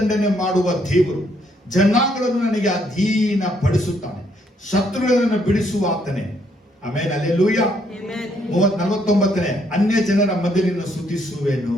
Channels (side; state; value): both; normal; correlation 0.71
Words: ಮಾಡುವ ದೇವರು, ಜನಾಂಗಗಳನ್ನು ನನಗೆ ಅಧೀನ ಪಡಿಸುತ್ತಾನೆ, ಶತ್ರುಗಳನ್ನು ಬಿಡಿಸುವ ಆತನೇ. ಆಮೇಲೆ ಹಲ್ಲೆಲೂಯ. Amen. 49ನೇ ಅನ್ಯ ಜನರ ಮಧ್ಯೆ ಸ್ತುತಿಸುವೆನು.